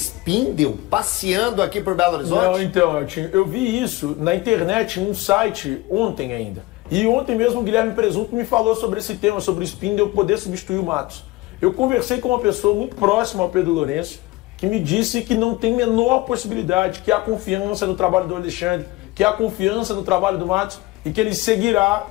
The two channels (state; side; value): quieter; right; 20.1 dB